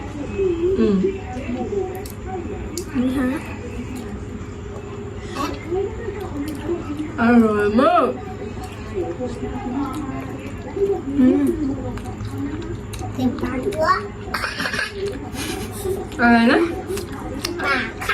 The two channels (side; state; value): both; identical; correlation 1.00